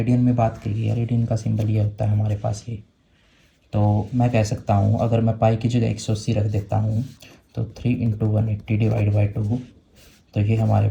में बात की है, रेडियन का सिंबल ये होता है हमारे पास ये। तो मैं कह सकता हूँ, अगर मैं पाई की जगह 180 रख देता हूँ तो 3 × 180 / 2, तो ये हमारे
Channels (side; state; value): both; identical; correlation 1.00